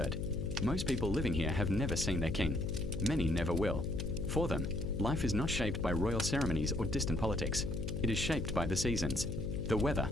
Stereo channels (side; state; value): left; noise; hum, 4 dB below the sound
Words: Most people living here have never seen their king. Many never will. For them, life is not shaped by royal ceremonies or distant politics. It is shaped by the seasons, the weather,